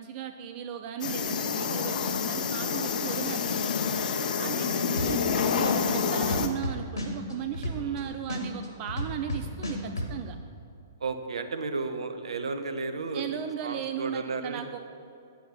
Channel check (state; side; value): inverted; both; correlation -0.40